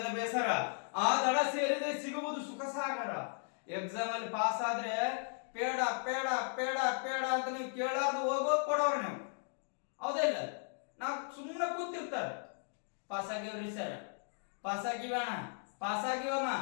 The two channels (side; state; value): right; silent; 54 dB below the other